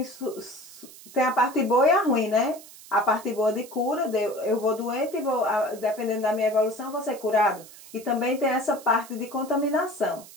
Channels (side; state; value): right; noise; hiss, 19 dB below the sound